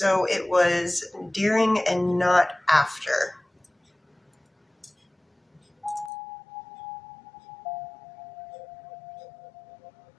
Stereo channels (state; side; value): drops out; right; at 6.1 s